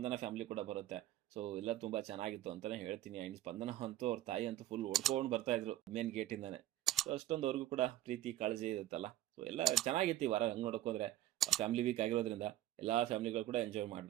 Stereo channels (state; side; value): quieter; left; 13.7 dB